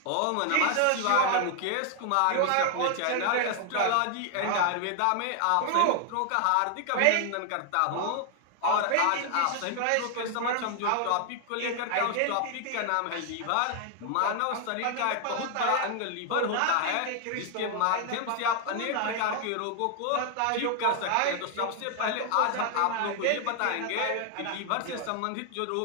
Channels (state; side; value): different; both; correlation 0.00